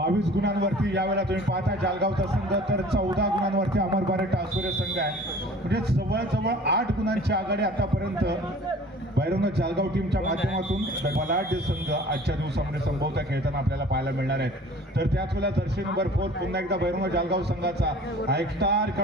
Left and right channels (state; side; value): normal; both; correlation 0.47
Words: गुणांवरती यावेळेला तुम्ही पाहता जालगावचा संघ तर 14 गुणांवरती अमर भारत टाळसुरे संघ आहे. म्हणजे जवळजवळ 8 गुणांची आघाडी आतापर्यंत भैरवनाथ जालगाव टीमच्या माध्यमातून बलाढ्य संघ आजच्या दिवसामध्ये संभवता खेळताना आपल्याला पाहायला मिळणार आहेत. तर त्याच वेळेला जर्सी नंबर 4 पुन्हा एकदा भैरवनाथ जालगाव संघाचा हा एक स्टार